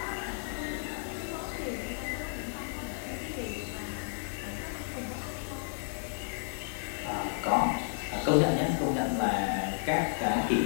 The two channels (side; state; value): right; silent; 56 dB below the other